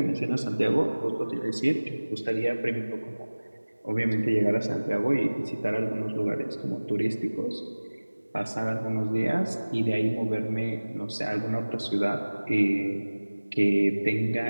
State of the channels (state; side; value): inverted; both; correlation -1.00